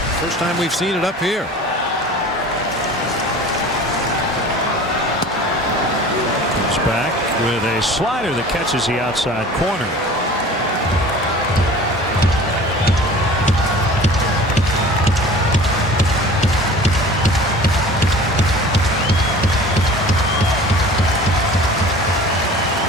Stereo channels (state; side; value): normal; both; correlation 0.42